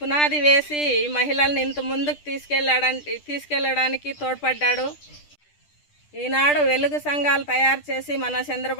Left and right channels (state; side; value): late; right; 10 ms